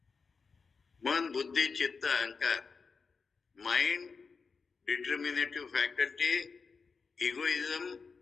man, buddhi, chitta, ahankar, mind, determinative faculty, egoism,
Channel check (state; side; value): quieter; right; 5.0 dB